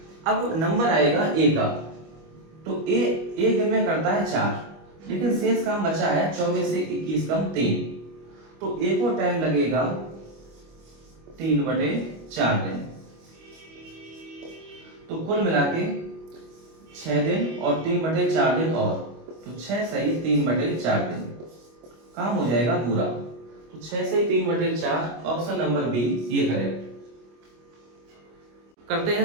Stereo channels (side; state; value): left; late; 25 ms